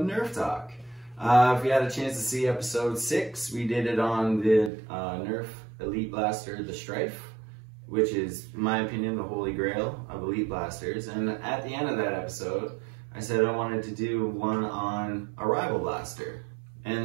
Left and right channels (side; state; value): left; drops out; at 4.7 s